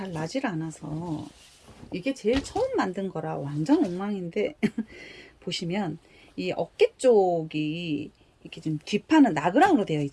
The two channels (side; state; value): both; identical; correlation 1.00